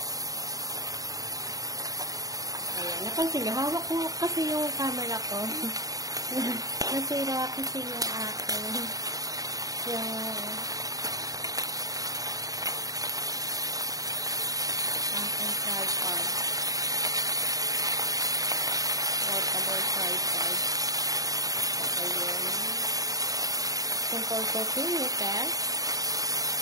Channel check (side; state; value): left; late; 0.17 ms